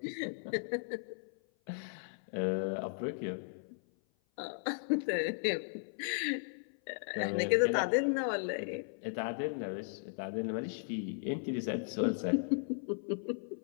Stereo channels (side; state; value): right; silent; 54 dB below the other